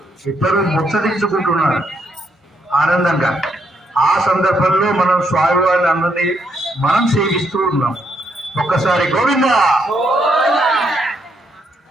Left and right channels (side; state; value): both; normal; correlation 0.75